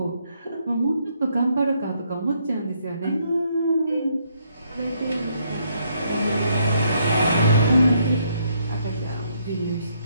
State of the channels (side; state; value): both; inverted; correlation -0.72